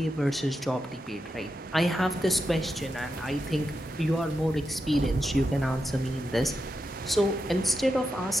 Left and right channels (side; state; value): both; normal; correlation 0.87